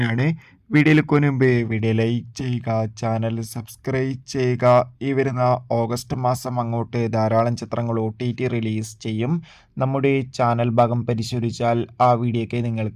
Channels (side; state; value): both; identical; correlation 1.00